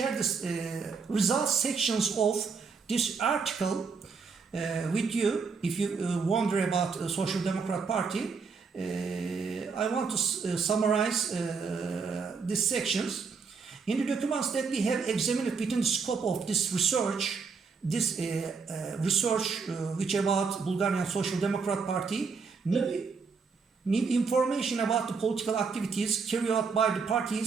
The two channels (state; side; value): quieter; left; 5.2 dB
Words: this results sections of this article with you. If you wonder about the Social Democrat Party, I want to summarize these sections. In the documents that we have examined within the scope of this research, which about Bulgarian Social Democrat Party, new information about the political activities carried out by the